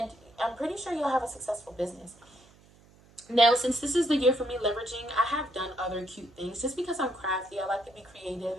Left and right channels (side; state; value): right; noise; hum, 27 dB below the sound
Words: I'm pretty sure you'll have a successful business. Now, since this is the year for me leveraging, I have done other cute things just because I'm crafty. I like to be creative